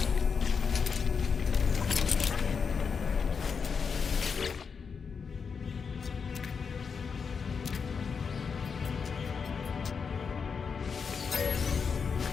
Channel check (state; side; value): quieter; right; 5.8 dB